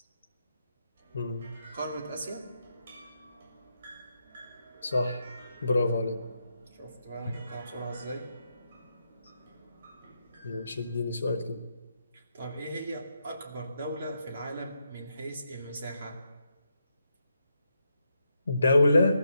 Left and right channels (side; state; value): both; inverted; correlation -0.82